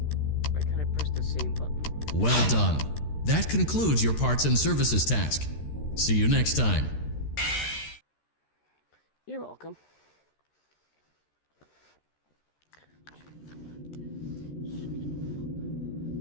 Why can't I press the same button? Well done. That concludes your parts and services task. See you next time. You're welcome.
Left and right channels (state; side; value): late; right; 13 ms